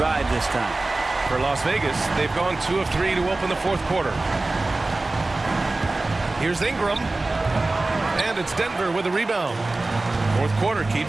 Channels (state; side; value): quieter; left; 3.1 dB